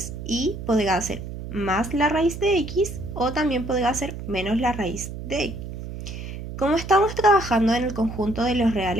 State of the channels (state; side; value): noise; right; hum, 9 dB below the sound